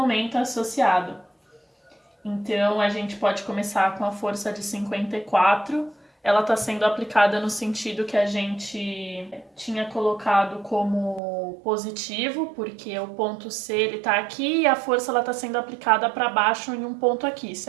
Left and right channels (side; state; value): left; drops out; at 11.2 s